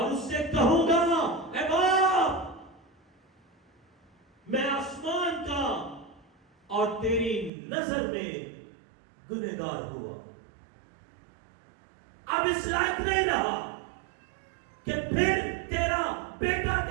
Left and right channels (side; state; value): left; drops out; at 7.5 s